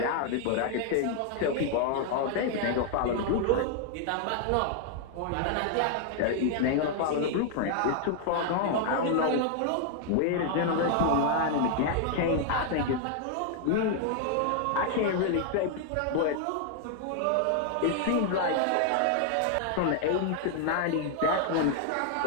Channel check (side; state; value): both; different; correlation 0.00